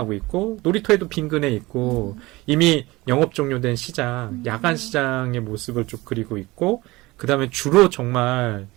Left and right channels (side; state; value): left; quieter; 20.8 dB